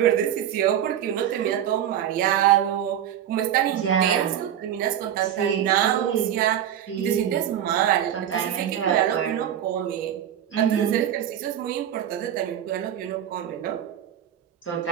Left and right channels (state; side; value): quieter; left; 10.3 dB